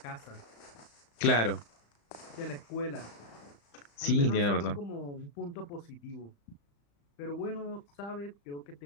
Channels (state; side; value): late; right; 35 ms